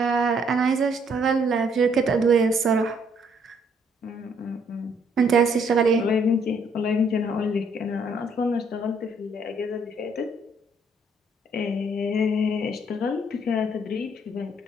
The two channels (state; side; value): normal; both; correlation 0.67